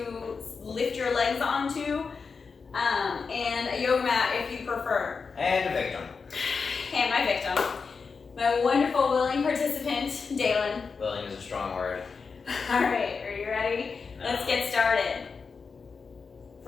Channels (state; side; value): quieter; right; 5.1 dB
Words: lift your legs onto, and a yoga mat if you prefer. And a victim. And my victim. My wonderful willing participant, Dalen. Willing is a strong word. Alright, are you ready? No. Let's get started.